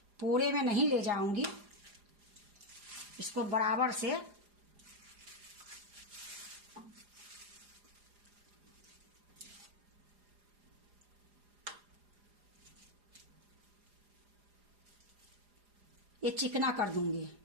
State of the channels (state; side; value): late; left; 4.9 ms